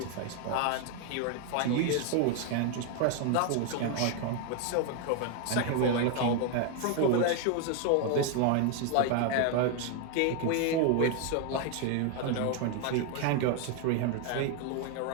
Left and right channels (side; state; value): both; different; correlation 0.01